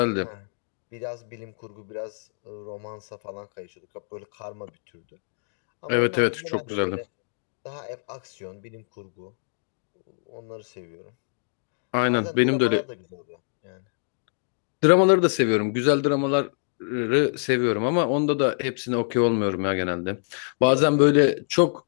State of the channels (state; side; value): silent; right; digital silence